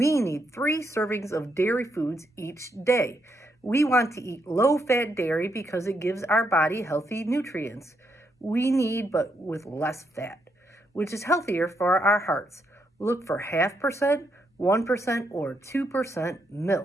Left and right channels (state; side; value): normal; both; correlation 0.78